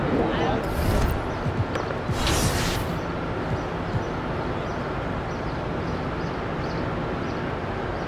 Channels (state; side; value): identical; both; correlation 1.00